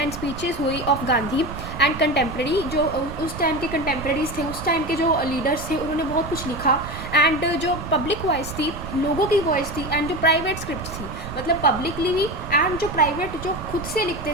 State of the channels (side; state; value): right; noise; rumble, 10 dB below the sound